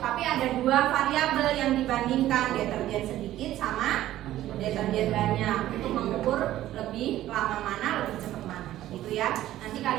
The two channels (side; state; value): left; quieter; 13.9 dB